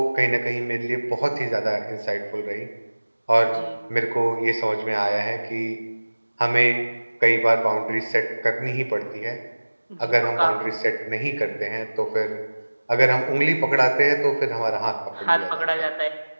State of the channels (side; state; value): both; inverted; correlation -1.00